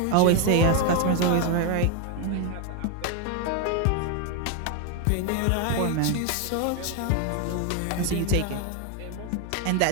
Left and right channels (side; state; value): both; different; correlation 0.01